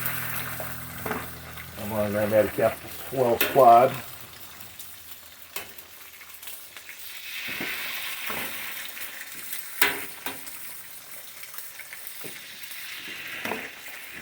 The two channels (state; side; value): identical; both; correlation 1.00